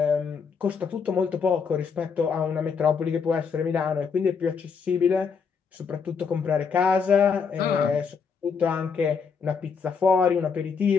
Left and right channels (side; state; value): right; quieter; 5.9 dB